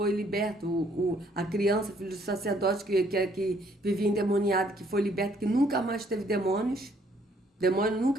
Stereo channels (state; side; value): normal; both; correlation 0.65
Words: liberto, a criança, filho do sacerdote que vivia endemoniado, que foi liberto, que nunca mais teve demônios. Demônio